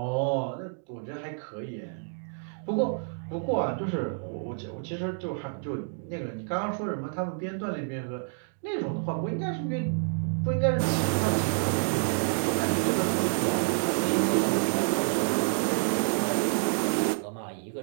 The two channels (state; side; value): silent; left; digital silence